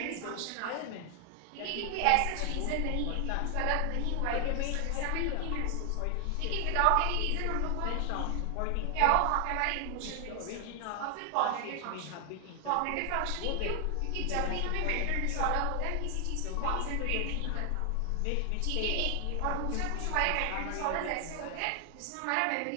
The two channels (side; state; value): both; different; correlation 0.00